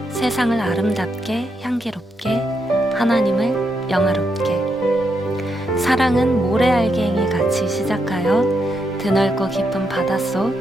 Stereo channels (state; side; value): normal; both; correlation 0.81